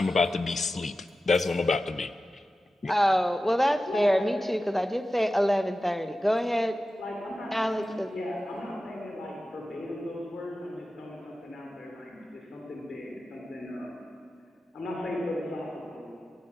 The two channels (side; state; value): both; normal; correlation 0.94